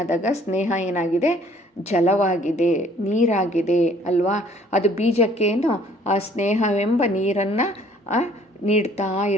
ಸ್ನೇಹ ಏನಾಗಿದೆ? ಜಲವಾಗಿದೆ, ನೀರಾಗಿದೆ ಅಲ್ವಾ? ಅದು ಬೀಜಕ್ಕೇನು ಆ ಸ್ನೇಹವೆಂಬ ನೀರನ್ನು ನೀಡ್ತಾ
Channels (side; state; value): both; normal; correlation 0.58